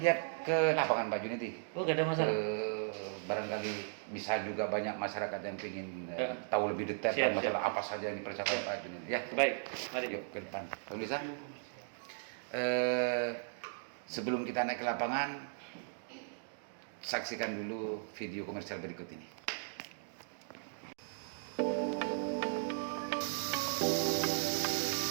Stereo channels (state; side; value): silent; left; digital silence